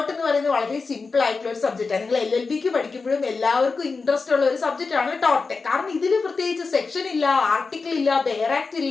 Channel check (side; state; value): right; quieter; 4.4 dB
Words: എന്ന് പറയുന്നത് വളരെ സിമ്പിൾ ആയിട്ടുള്ള ഒരു സബ്ജക്റ്റാണ്. നിങ്ങൾ LLBക്ക് പഠിക്കുമ്പോഴും എല്ലാവർക്കും ഇൻട്രസ്റ്റ് ഉള്ള ഒരു സബ്ജക്റ്റ് ആണ് ടോട്ട്. കാരണം ഇതിൽ പ്രത്യേകിച്ച് സെക്ഷൻ ഇല്ല, ആർട്ടിക്കിൾ ഇല്ല, ബെയർ ആക്ട്